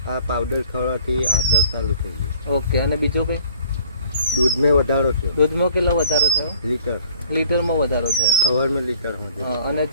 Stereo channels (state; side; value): inverted; both; correlation -0.56